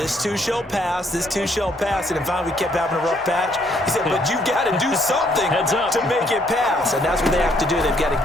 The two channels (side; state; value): both; normal; correlation 0.68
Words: too shall pass, this too shall pass. And finally we kept having a rough patch. He said, but you got to do something to make it pass. And that's what they have to do. They've got